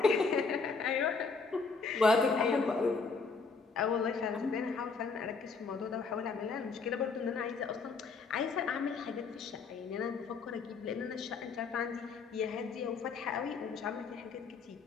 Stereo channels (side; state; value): right; quieter; 4.7 dB